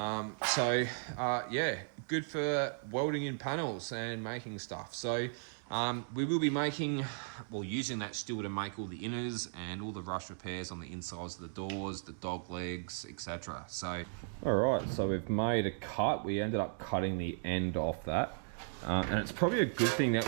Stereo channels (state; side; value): silent; left; digital silence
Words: good for welding in panels and making stuff. So we will be using that steel to make all the inners and all the rust repairs on the insides of the doors, the dog legs, etc. So, all right, so we've made a cut. We ended up cutting the end off that. And it's probably a good thing that